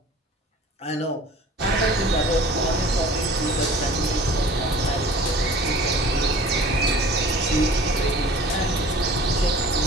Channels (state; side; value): normal; both; correlation 0.45